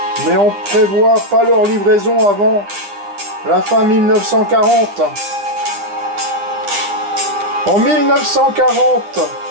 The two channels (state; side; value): late; left; 10 ms